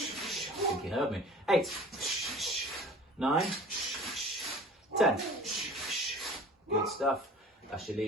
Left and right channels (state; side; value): normal; both; correlation 0.44